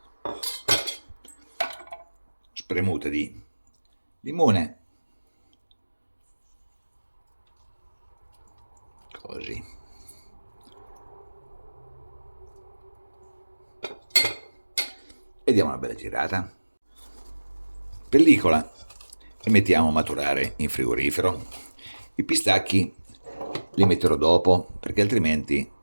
Spremuta di limone. Così. E diamo una bella girata. Pellicola e mettiamo a maturare in frigorifero. I pistacchi li metterò dopo perché altrimenti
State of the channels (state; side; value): inverted; both; correlation -1.00